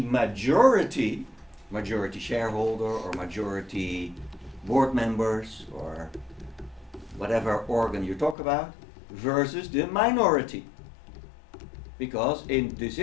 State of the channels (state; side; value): drops out; right; at 8.3 s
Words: majority shareholder or majority board members or whatever organ you talk about, versus the minority. Because in